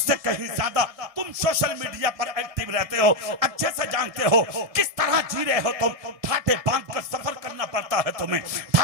कहीं ज्यादा तुम सोशल मीडिया पर एक्टिव रहते हो, अच्छे से जानते हो किस तरह जी रहे हो तुम। ठाटे बांध कर सफर करना पड़ता है तुम्हें,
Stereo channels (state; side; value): late; left; 1.7 ms